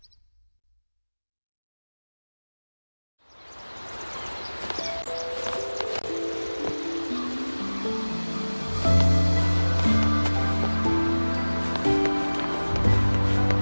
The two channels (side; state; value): both; inverted; correlation -1.00